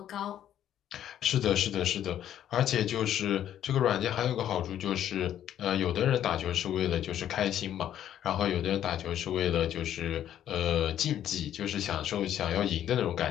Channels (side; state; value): right; quieter; 10.9 dB